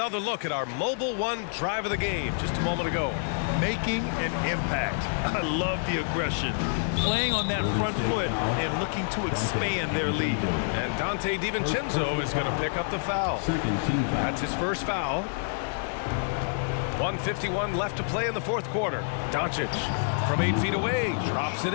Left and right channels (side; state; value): right; silent; digital silence